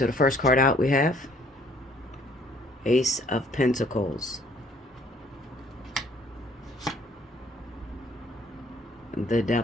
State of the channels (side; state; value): both; normal; correlation 0.61